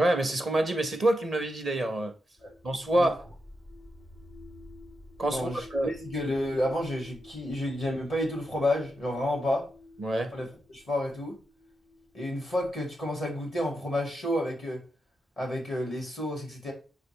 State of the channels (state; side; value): normal; both; correlation 0.86